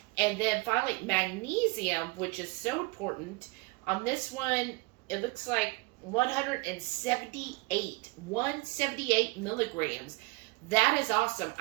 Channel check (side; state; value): left; quieter; 26.0 dB